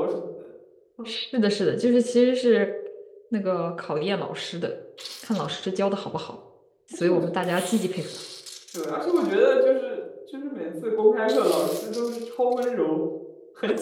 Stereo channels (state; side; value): identical; both; correlation 1.00